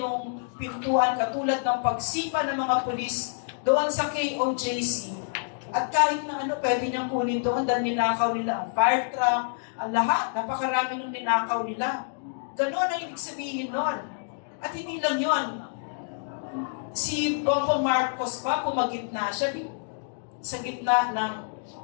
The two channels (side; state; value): right; silent; digital silence